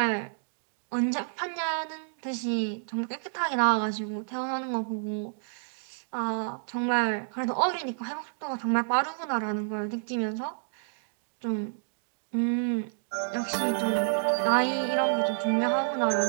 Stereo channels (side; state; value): left; silent; digital silence